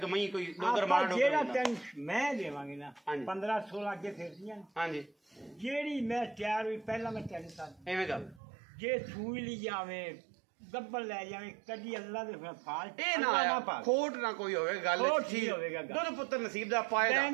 कि मई कोई डोगर मार डोगर जेड़ा तैन मैं देवांगी ना 15 16 अगे फिरदियां हां जी जेड़ी मैं तैयार हुई पहला मैं तैन सा एवें गल जे छूई ली जावे गब्बल ले जावे कदी अल्लाह दे फाल्ट ए ना आया खोट ना कोई होवे गल ठीक होवेगा दुध पुत्र नसीब दा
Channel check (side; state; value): left; drops out; at 8.4 s